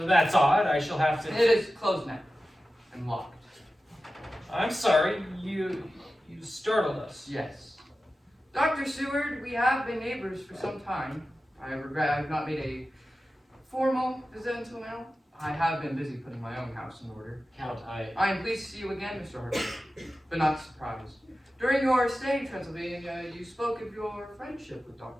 That's odd. I shall have to... It is closed now and locked. I'm sorry. You startled us. Yes. Dr. Seward, we have been neighbors for some time. I regret I have not made a formal visit until now. I have been busy putting my own house in order. Count, I am pleased to see you again, Mr. Harper, but not surprised. During your stay in Transylvania, you spoke of your friendship with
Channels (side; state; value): both; normal; correlation 0.94